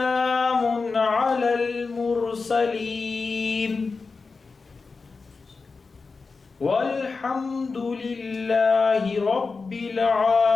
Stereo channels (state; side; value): quieter; right; 4.4 dB